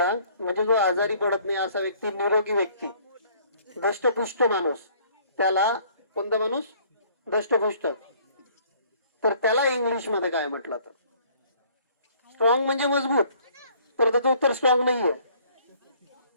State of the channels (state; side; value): inverted; both; correlation -0.58